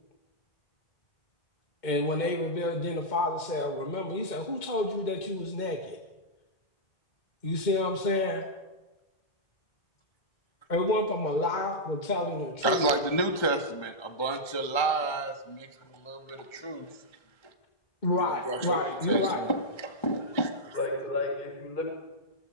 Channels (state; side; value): late; right; 1.3 ms